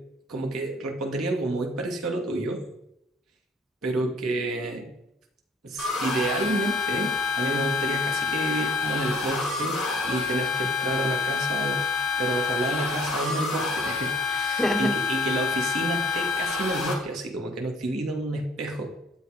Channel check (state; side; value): normal; both; correlation 0.56